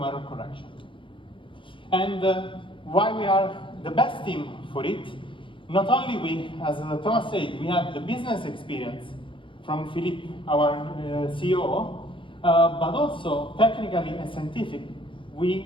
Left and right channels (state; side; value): late; right; 0.25 ms